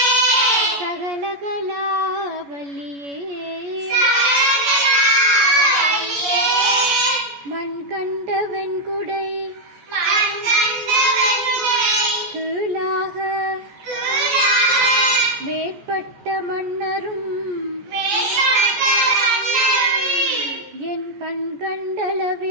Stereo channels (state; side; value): late; left; 14 ms